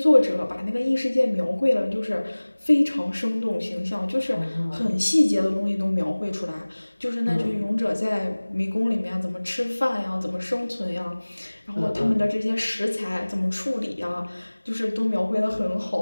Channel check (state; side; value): inverted; both; correlation -1.00